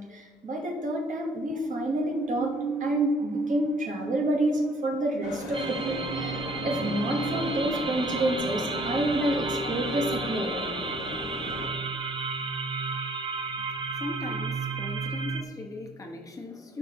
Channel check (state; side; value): normal; both; correlation 0.59